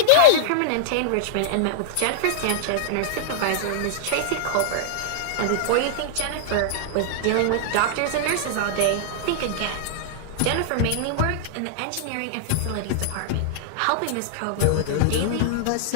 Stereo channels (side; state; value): both; different; correlation -0.01